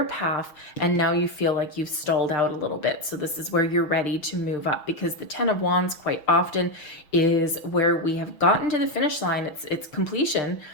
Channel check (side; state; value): right; late; 6.2 ms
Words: path, and now you feel like you've stalled out a little bit. So this is where you're ready to move up, because the 10 of Wands quite often is where we have gotten to the finish line. It's completion,